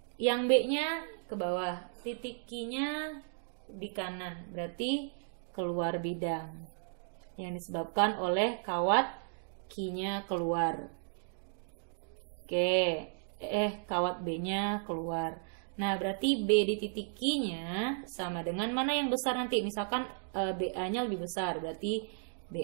yang B-nya ke bawah, titik Q-nya di kanan. Berarti keluar bidang yang disebabkan oleh kawat Q-nya keluar. Oke, kawat B-nya keluar. Nah, berarti B di titik Q-nya sama dengan mana yang besar nanti. Misalkan BA-nya lebih besar, berarti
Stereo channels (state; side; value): silent; left; digital silence